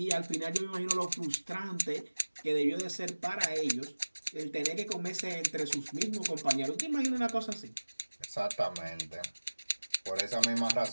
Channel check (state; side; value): inverted; both; correlation -1.00